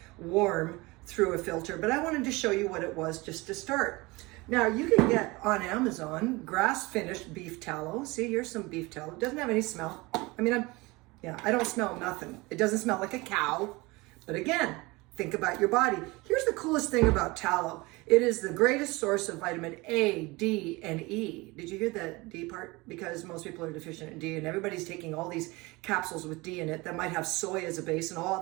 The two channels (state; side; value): quieter; left; 23.3 dB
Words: warm through a filter, but I wanted to show you what it was just to start. Now you can get on Amazon grass-finished beef tallow. See, here's some beef tallow. It doesn't have any smell. I mean, I don't smell nothing. It doesn't smell like a cow, but again, think about your body. Here's the coolest thing about tallow. It is the greatest source of vitamin A, D, and E. Did you hear the D part? Because most people are deficient in D, and everybody's taking all these capsules with D in it that might have soy as a base and all